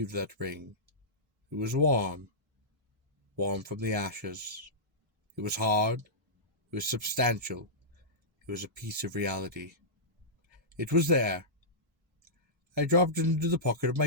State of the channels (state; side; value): normal; both; correlation -0.15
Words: that ring. It was warm from the ashes. It was hard, it was substantial, it was a piece of reality. It was there. I dropped it into the pocket of